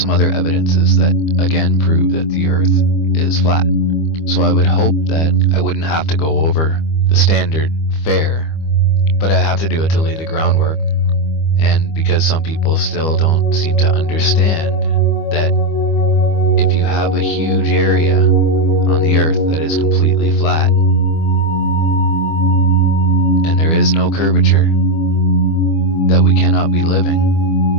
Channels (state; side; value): late; right; 25 ms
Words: other evidences that again prove that the Earth is flat. So I would hope that I wouldn't have to go over the standard fare, but I have to do it to lay the groundwork, and because some people still don't seem to understand that if you have a huge area on the Earth that is completely flat and there is no curvature, that we cannot be